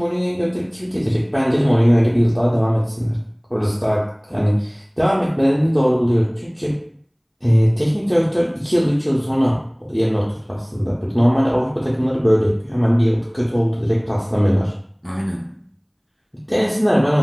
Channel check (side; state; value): both; identical; correlation 1.00